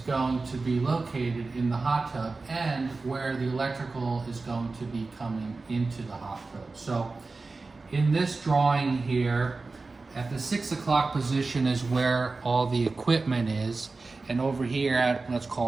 to be located in the hot tub and where the electrical is going to be coming into the hot tub. So in this drawing here, at the 6 o'clock position is where all the equipment is, and over here at, let's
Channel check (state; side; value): quieter; left; 3.8 dB